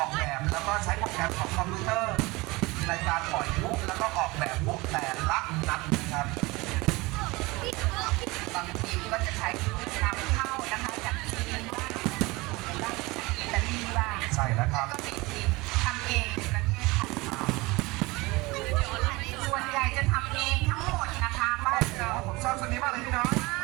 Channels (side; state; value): left; quieter; 22.8 dB